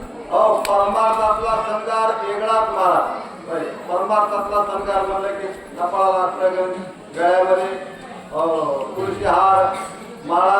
परमार्थातला संगार वेगळाच महाराज. परमार्थातला संगार म्हणलं की कपाळाला अष्टगंध, गळ्यामध्ये तुळशी हार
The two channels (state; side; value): identical; both; correlation 1.00